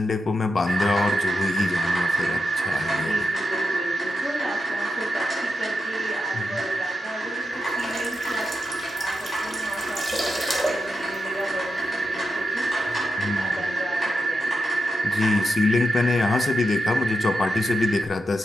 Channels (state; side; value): normal; both; correlation 0.87